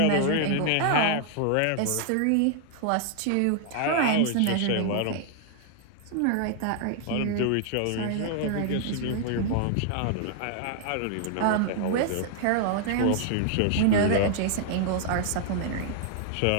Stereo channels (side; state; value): both; different; correlation 0.00